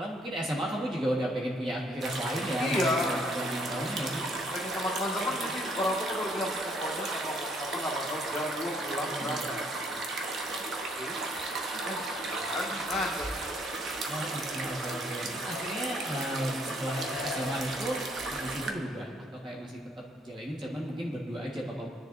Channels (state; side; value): normal; both; correlation 0.66